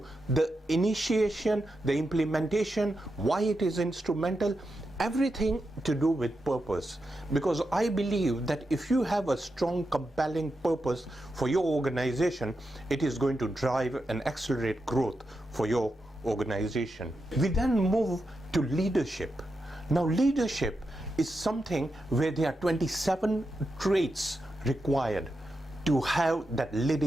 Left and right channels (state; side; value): normal; both; correlation 0.87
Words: the initiation, the implementation, why it is instrumental, everything to do with purpose. Because I believe that if you have a strong, compelling purpose for your organization, it is going to drive and accelerate growth for your organization. We then move to leadership. Now leadership is something where there are 27 traits required to have that